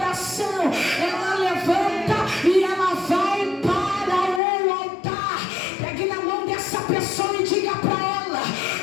Ela levanta e ela vai para o altar. Pegue na mão dessa pessoa e diga para ela:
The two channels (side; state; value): right; drops out; at 4.4 s